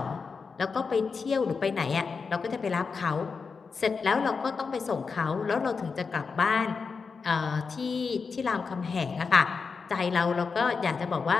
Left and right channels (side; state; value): right; quieter; 5.1 dB